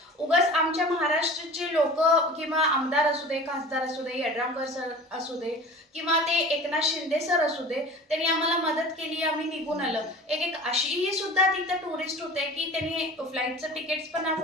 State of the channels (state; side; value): normal; both; correlation 0.40